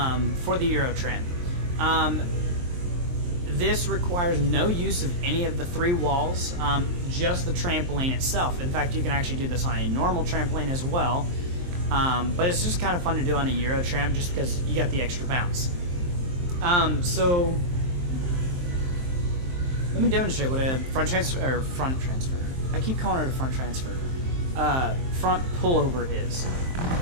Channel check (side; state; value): left; late; 23 ms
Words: the Euro tramp. This requires no use of any of the three walls, just the trampoline itself. In fact, you can actually do this on a normal trampoline as well, but it's just kind of fun to do on a Euro tramp just because you got the extra bounce. So let me demonstrate what a front transfer. I keep calling it a front transfer. Front pullover is.